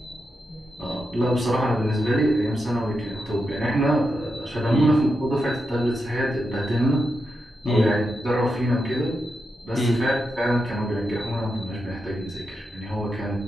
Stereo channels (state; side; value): normal; both; correlation 0.87